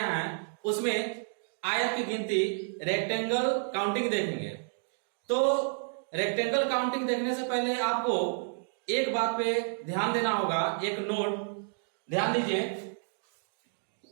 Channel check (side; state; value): left; silent; digital silence